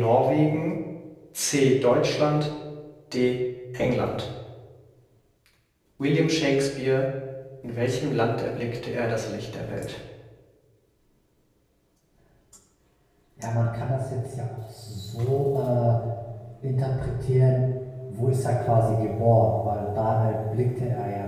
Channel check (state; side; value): identical; both; correlation 1.00